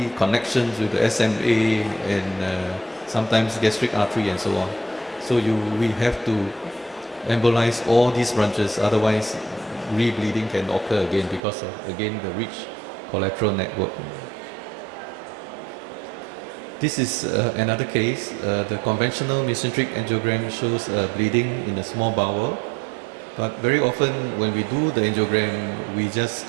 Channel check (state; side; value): drops out; left; at 11.4 s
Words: connections with the SMA and sometimes gastric artery and so on. So we have to embolize all these branches, otherwise rebleeding can occur again because of, again, the rich collateral network. This is another case. The conventional mesenteric angiogram shows bleeding in the small bowel, but very often when we do the angiogram, we just